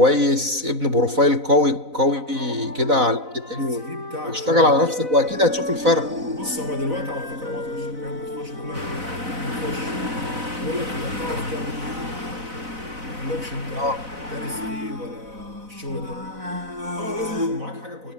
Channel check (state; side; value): late; left; 4.0 ms